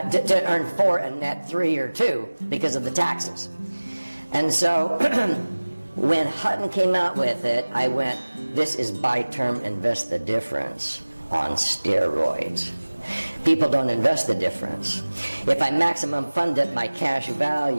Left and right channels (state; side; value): inverted; both; correlation -1.00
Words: earn 4 and net 3 or 2 because of the taxes. And so when Hutton came out with it, I went, this is buy term, invest the difference on steroids. People don't invest the difference. If I maximum fund it, my cash